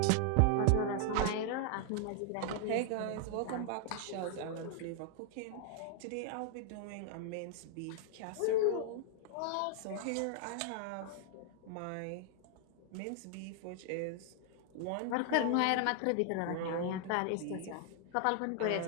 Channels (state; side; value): different; both; correlation 0.00